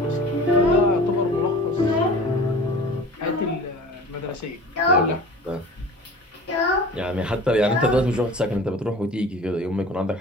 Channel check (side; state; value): both; normal; correlation 0.41